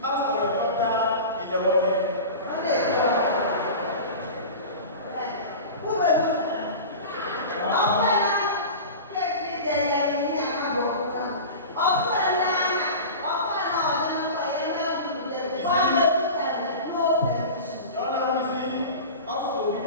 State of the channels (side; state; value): both; inverted; correlation -0.32